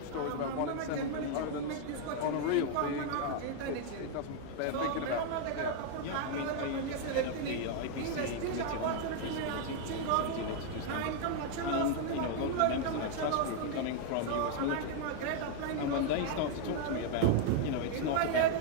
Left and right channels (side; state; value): both; different; correlation 0.00